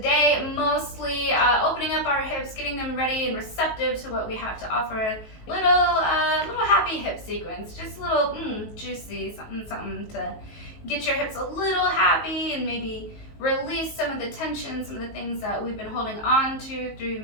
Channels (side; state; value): right; late; 19 ms